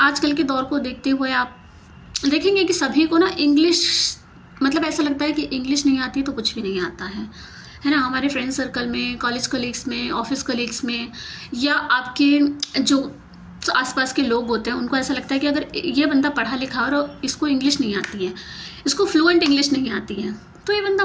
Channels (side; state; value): both; identical; correlation 1.00